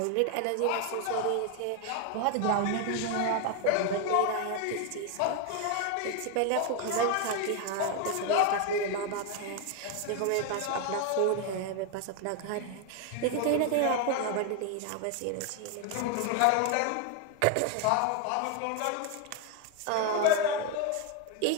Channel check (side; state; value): both; different; correlation 0.01